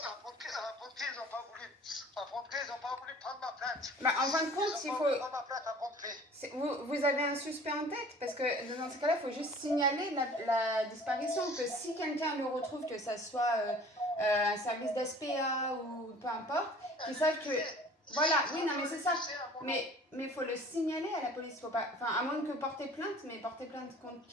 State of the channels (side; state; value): both; normal; correlation 0.48